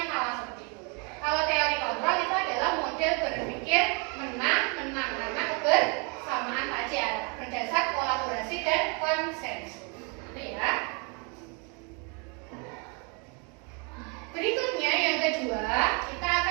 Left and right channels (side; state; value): left; quieter; 33.2 dB